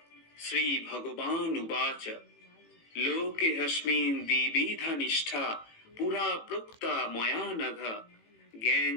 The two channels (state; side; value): late; right; 18 ms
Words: শ্রী ভগবান উবাচ লোকে হস্মিন দ্বিবিধা নিষ্ঠা পুরা প্রোক্তা ময়া নঘ জ্ঞান